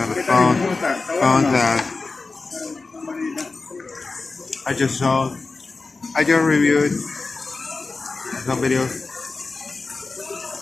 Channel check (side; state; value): right; quieter; 3.8 dB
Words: on the phone that I just reviewed some videos,